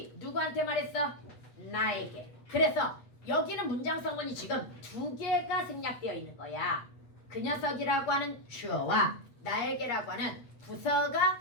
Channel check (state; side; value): late; right; 8.4 ms